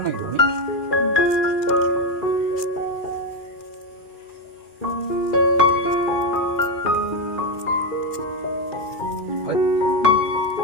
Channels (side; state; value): right; late; 2.4 ms